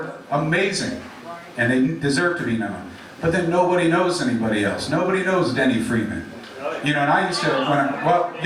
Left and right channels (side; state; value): both; identical; correlation 1.00